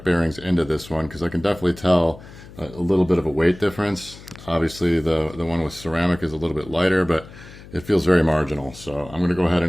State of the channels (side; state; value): left; noise; hum, 18 dB below the sound